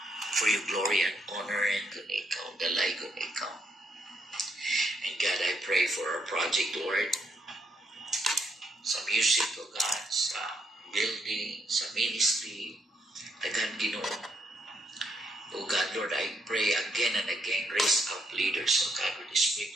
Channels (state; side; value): normal; both; correlation 0.76